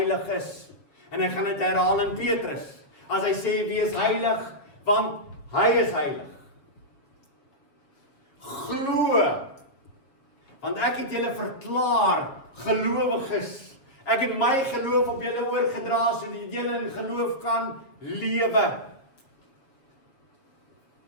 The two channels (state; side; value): late; right; 7.3 ms